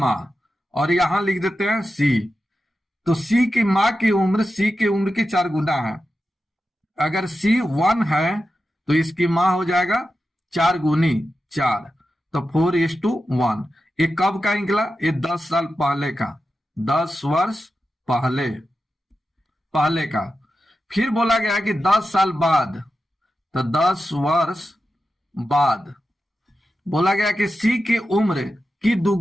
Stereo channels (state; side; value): normal; both; correlation 0.91